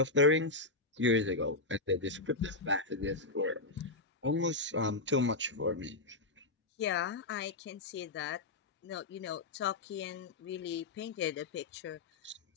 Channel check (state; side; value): quieter; right; 3.3 dB